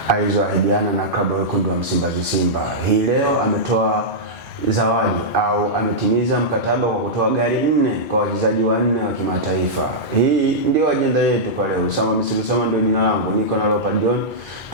alizoahidiana na klabu ya wekundu wa Msimbazi Simba. Hii leo ametoa zawadi au ametimiza mkataba kwa kutoa gari 4 kwa wachezaji 4 wa kimataifa. Hii ndio ajenda yetu kwa leo. Usama Misri Usama ndio jina langu. Niko na Leopard John.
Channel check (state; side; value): normal; both; correlation -0.10